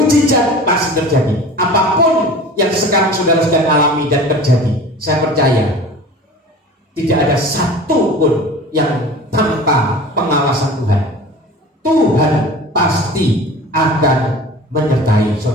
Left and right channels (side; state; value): both; normal; correlation 0.39